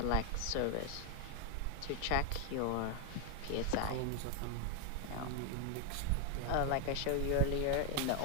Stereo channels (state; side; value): different; both; correlation 0.01